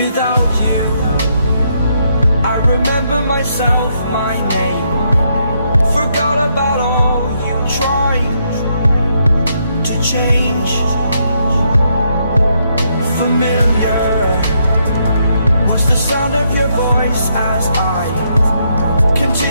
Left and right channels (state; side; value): inverted; both; correlation -0.76